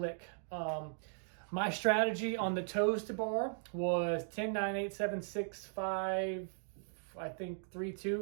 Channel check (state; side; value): silent; left; digital silence